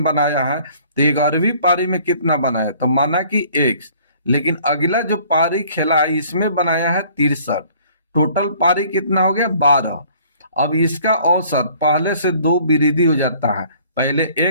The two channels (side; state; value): both; inverted; correlation -0.55